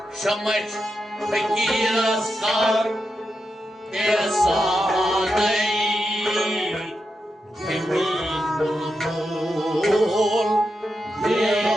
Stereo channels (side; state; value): both; normal; correlation 0.87